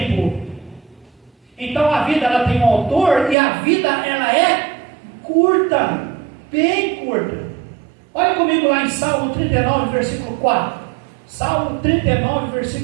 Então a vida ela tem um autor, e a vida ela é curta, bem curta. Olha comigo lá em Salmo 39, versículo 4. Salmo 39,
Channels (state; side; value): drops out; left; at 3.4 s